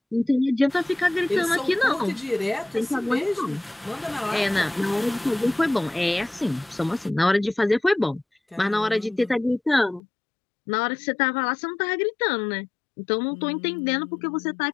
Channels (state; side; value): drops out; right; at 10.0 s